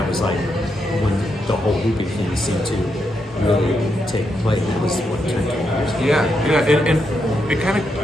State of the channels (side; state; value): both; normal; correlation 0.82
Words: was like when the whole looping thing seemed to really take place. That was what 10 years ago. Yeah, and it kind of,